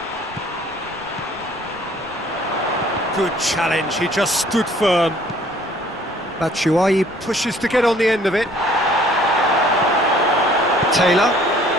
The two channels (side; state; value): left; noise; rumble, 25 dB below the sound